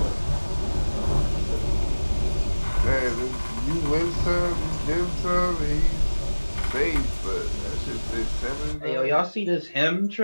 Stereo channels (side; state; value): both; inverted; correlation -1.00